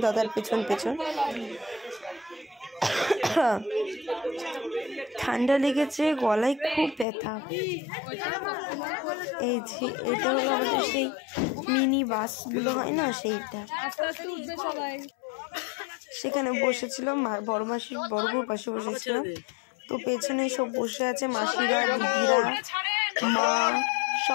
দাদার পেছন পেছন। ঠান্ডা লেগেছে, গলায় খুব ব্যথা। এই যে এটা হলো আমাদের সেই মিনি বাসগুলো হয় না, সেইটা। সেখানে বসেছিলাম, বড় মাসির বড় বউর পাশে বসেছিলাম। তো পেছনে সব বসে আছে মাসিরা, দিদিরা, মা,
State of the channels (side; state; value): right; drops out; at 7.1 s